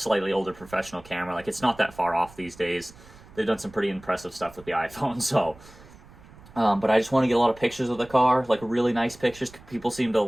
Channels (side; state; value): right; noise; rumble, 22 dB below the sound